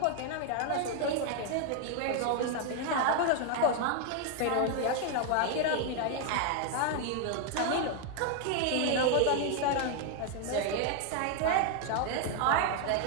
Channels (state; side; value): different; both; correlation 0.00